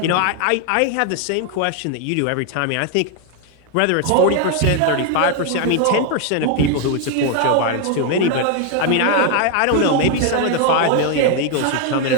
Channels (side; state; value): both; different; correlation 0.01